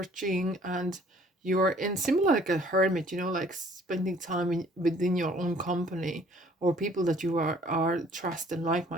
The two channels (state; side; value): normal; both; correlation 0.57